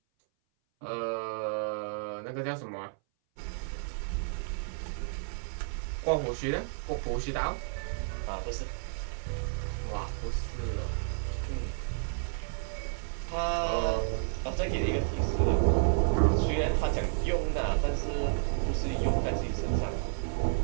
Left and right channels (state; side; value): silent; left; 57 dB below the other